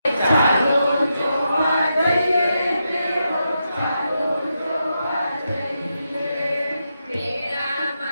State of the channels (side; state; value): both; inverted; correlation -0.85